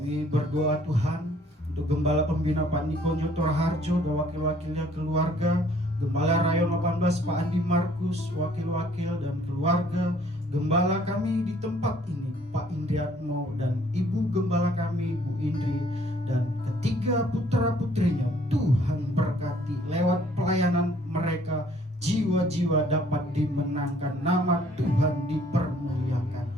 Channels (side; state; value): both; normal; correlation 0.60